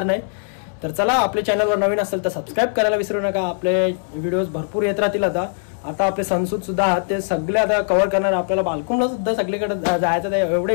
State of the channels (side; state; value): right; silent; 65 dB below the other